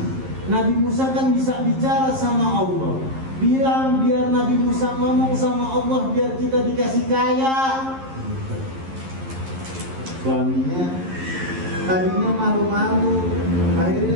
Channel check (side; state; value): left; late; 11 ms